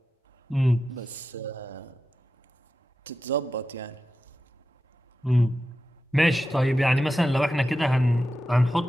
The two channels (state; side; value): normal; both; correlation 0.91